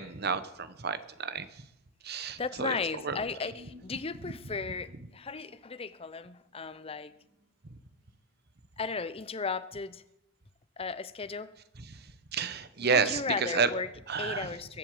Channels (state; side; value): normal; both; correlation -0.05